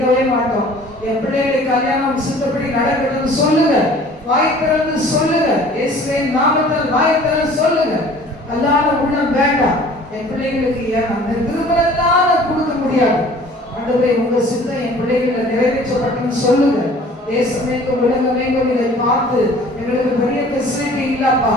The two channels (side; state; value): both; normal; correlation 0.49